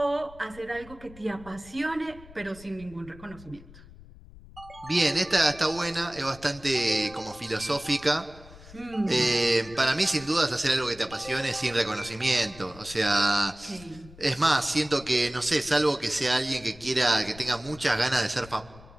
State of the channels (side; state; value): left; noise; rumble, 20 dB below the sound